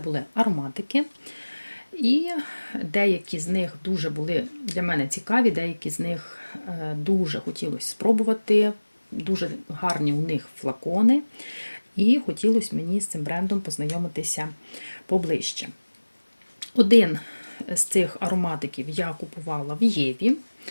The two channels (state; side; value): inverted; both; correlation -1.00